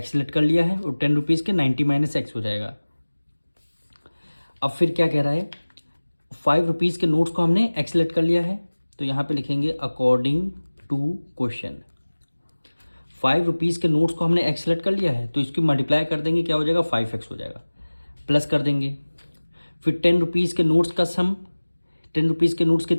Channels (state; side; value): inverted; both; correlation -1.00